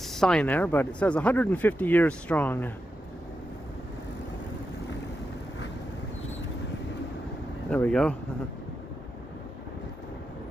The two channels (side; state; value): both; normal; correlation 0.88